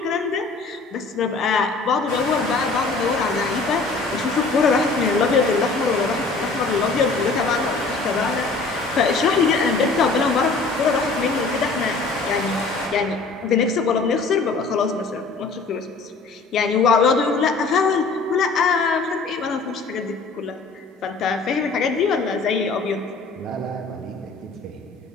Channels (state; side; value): quieter; right; 4.0 dB